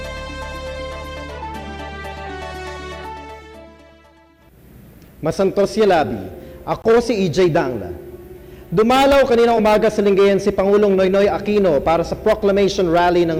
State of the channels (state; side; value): identical; both; correlation 1.00